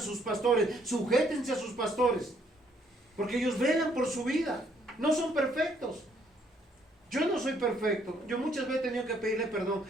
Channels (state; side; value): normal; both; correlation 0.68